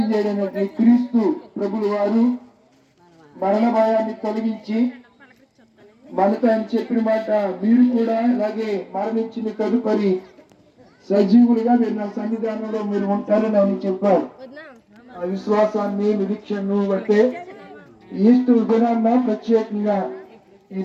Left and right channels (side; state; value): both; identical; correlation 1.00